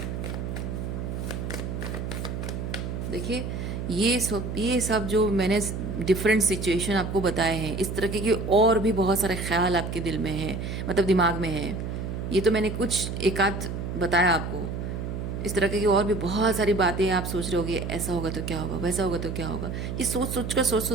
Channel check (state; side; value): noise; right; hum, 4 dB below the sound